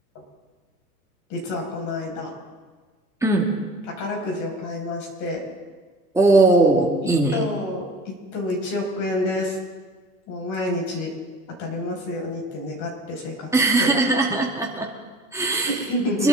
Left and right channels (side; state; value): both; normal; correlation 0.44